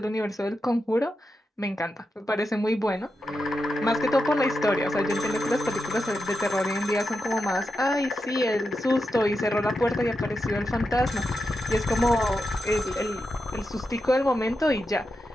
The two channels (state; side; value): normal; both; correlation 0.88